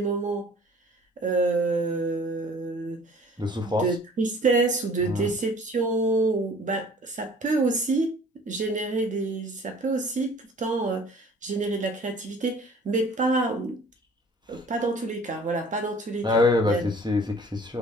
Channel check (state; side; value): normal; both; correlation 0.50